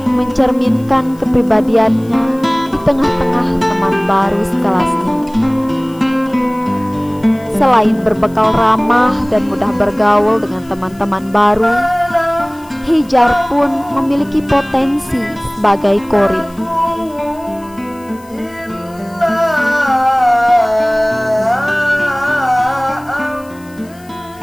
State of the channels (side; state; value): left; noise; hiss, 27 dB below the sound